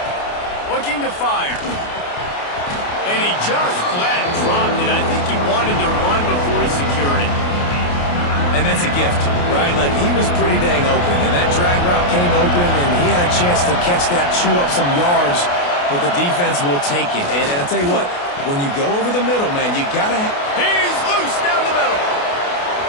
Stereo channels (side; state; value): right; late; 28 ms